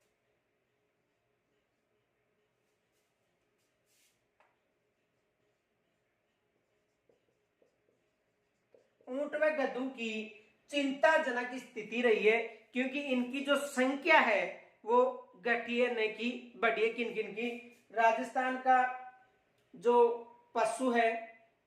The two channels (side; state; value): both; identical; correlation 1.00